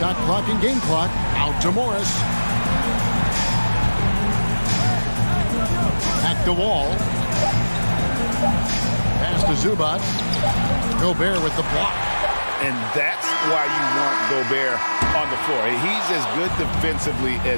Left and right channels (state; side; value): inverted; both; correlation -1.00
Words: clock and game clock. Out to Morris. Back to Wall. Pass to Zubac. Gobert with the block. And that's why you want Gobert on the floor. He's as good defensively